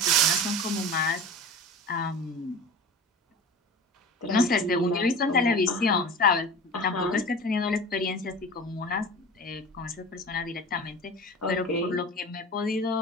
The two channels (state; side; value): normal; both; correlation 0.35